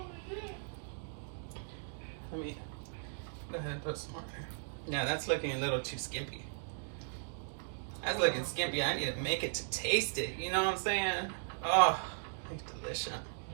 let me go ahead and put some more there. Yeah, that's looking a little too skimpy. That's looking skimpy. I need to make it to taste it. You know what I'm saying? Oh, it's delicious.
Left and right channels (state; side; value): silent; left; digital silence